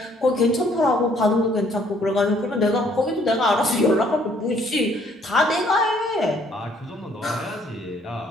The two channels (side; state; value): both; normal; correlation 0.63